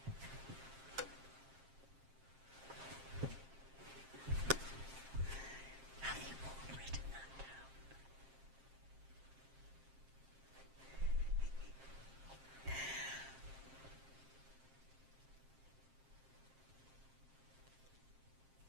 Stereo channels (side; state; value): left; late; 7.5 ms